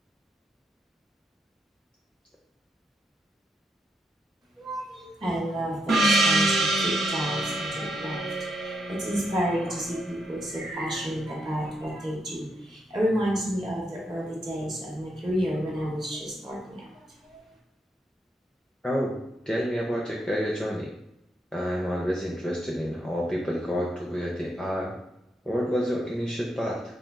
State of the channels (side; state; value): both; normal; correlation 0.80